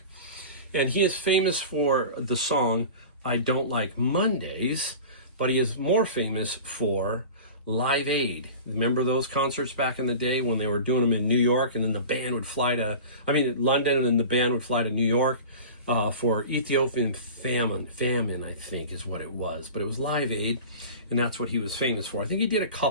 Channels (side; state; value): both; inverted; correlation -0.35